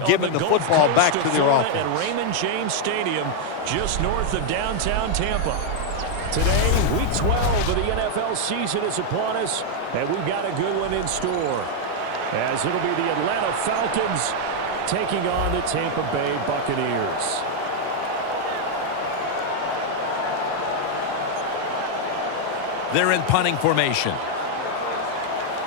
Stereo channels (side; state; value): both; different; correlation 0.00